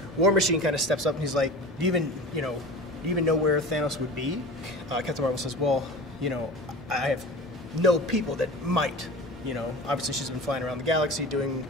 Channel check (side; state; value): both; normal; correlation 0.35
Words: War Machine kind of steps up and he's like, do you even know where Thanos would be? Captain Marvel says, well, you know, I have no people that might. You know, obviously she's been flying around the galaxy doing